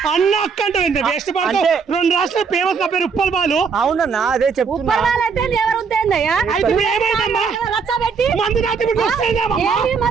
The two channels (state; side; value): quieter; left; 5.7 dB